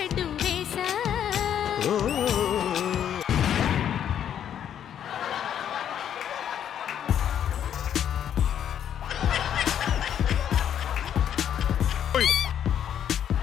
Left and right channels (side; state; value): right; quieter; 9.5 dB